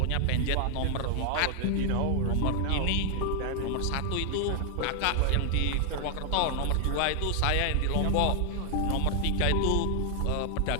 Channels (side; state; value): both; different; correlation 0.00